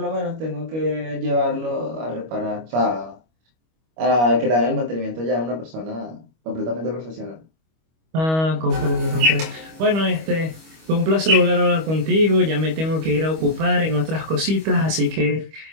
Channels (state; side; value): late; left; 25 ms